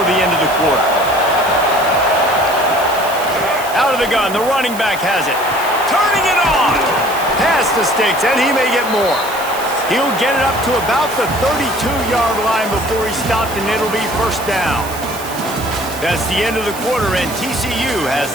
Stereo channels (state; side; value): noise; right; hiss, 13 dB below the sound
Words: the end of the quarter. Out of the gun, the running back has it. Turning it on! Past the sticks, and he may get more. He'll get it up to about the 32-yard line before he's stopped, and it'll be first down. That's the end of the quarter, and TCU has